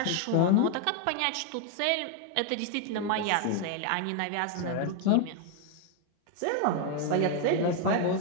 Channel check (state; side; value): different; both; correlation 0.01